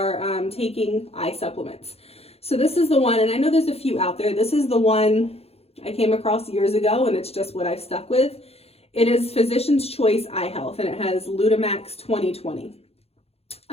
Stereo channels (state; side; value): late; right; 0.29 ms